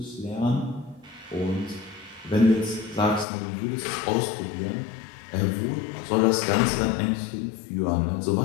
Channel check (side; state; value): right; drops out; at 3.2 s